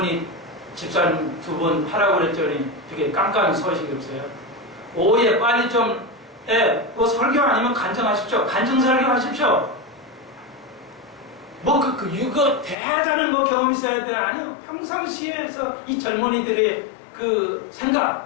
집사님 두 분 하라고 그랬더니 되게 깜깜이 소식이 없어요. 오후에 빨리 좀, 뭐 설교 아니면 간증하십시오. 간증 설교 하십시오. 뭐 이거 대단한 뭐 경험 있어야 되나? 아니요. 평상시에서 이 젊은이들의 그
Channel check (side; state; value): right; drops out; at 12.8 s